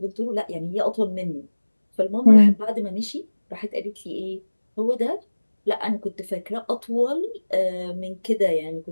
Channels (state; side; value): inverted; both; correlation -1.00